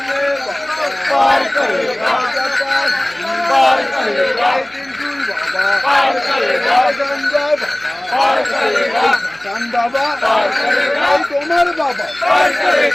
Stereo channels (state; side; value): noise; left; hum, 29 dB below the sound